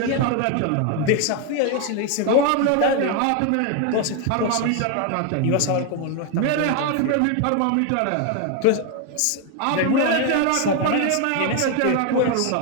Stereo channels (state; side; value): different; both; correlation 0.01